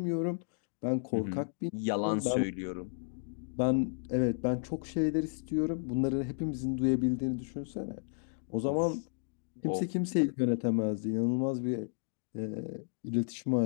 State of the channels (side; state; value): right; silent; digital silence